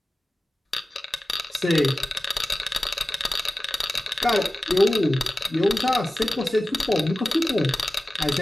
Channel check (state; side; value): normal; both; correlation 0.96